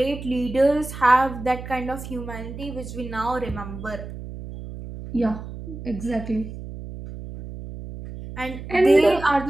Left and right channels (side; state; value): right; noise; hum, 11 dB below the sound